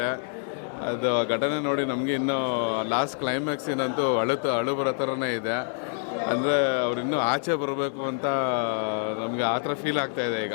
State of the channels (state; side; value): silent; right; 59 dB below the other